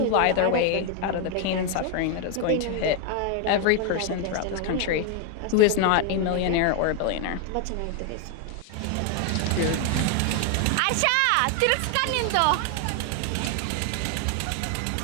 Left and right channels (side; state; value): both; different; correlation 0.00